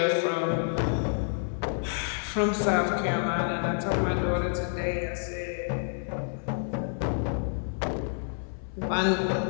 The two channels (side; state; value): right; silent; 59 dB below the other